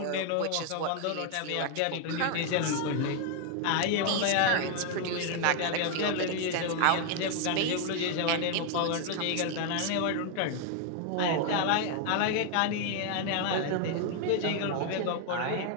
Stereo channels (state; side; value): different; both; correlation 0.01